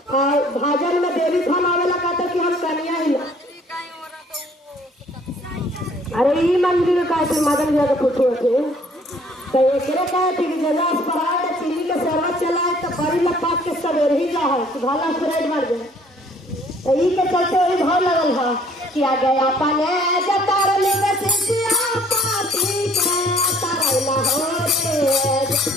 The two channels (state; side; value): normal; both; correlation 0.59